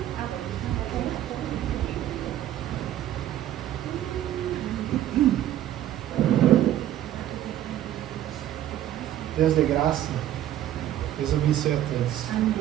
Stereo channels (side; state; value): left; quieter; 12.4 dB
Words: Deus de graça, Deus abençoe a todos.